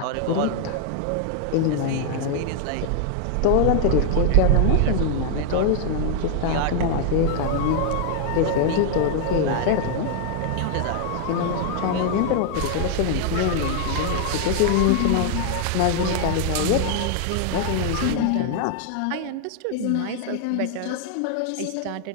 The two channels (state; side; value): different; both; correlation 0.00